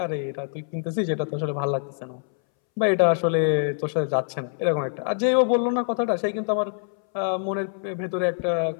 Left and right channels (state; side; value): silent; right; 62 dB below the other